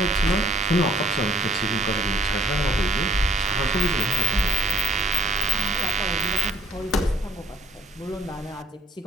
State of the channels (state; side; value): normal; both; correlation 0.58